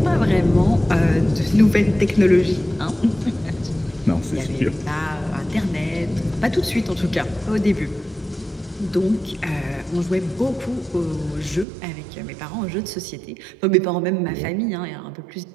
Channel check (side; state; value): left; drops out; at 11.7 s